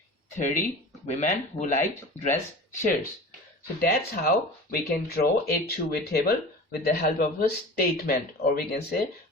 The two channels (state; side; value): normal; both; correlation 0.36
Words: 30 women who liked dress shirts. So that's how we can draw a two-way table with the help of a statement, or we can say